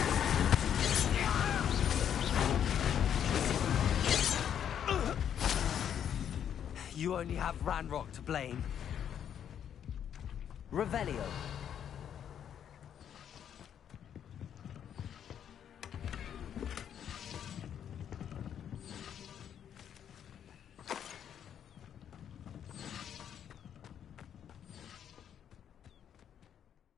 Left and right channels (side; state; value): right; quieter; 9.1 dB